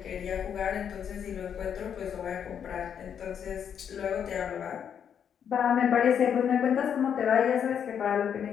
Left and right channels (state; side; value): quieter; right; 8.2 dB